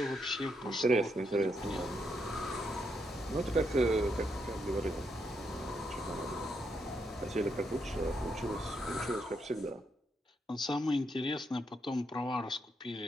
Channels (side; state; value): both; normal; correlation 0.80